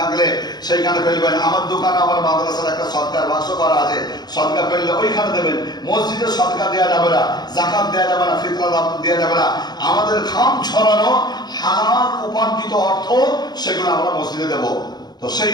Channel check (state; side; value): late; right; 0.20 ms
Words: সেইখানে ফেলবেন। আমার দোকানে, আমার মাদ্রাসার একটা সদকার বাক্স করা আছে, সদকা ফেললে ওইখানে দেবেন। মসজিদে সদকা দেওয়া যাবে না, জাকাত দেওয়া যাবে না, ফিতরা দেওয়া যাবে না। আমাদের খাম ছড়ানো হালাল উপার্জিত অর্থ সেগুলো আমরা মসজিদে দেব। তো সেই